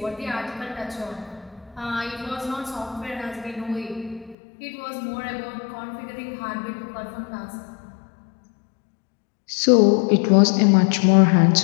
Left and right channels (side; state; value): right; drops out; at 4.4 s